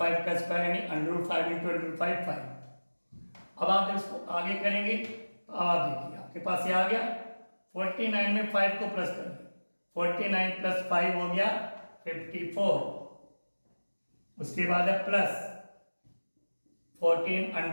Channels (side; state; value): both; inverted; correlation -1.00